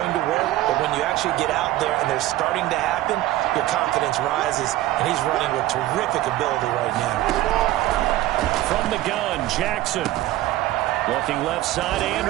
to work, but when you actually get out there and they're starting to happen, your confidence rises, and he's running with terrific ability right now. From the gun, Jackson. Looking left side,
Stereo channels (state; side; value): quieter; left; 15.6 dB